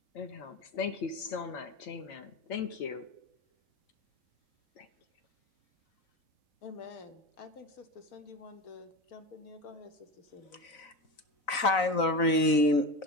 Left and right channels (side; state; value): right; late; 4.0 ms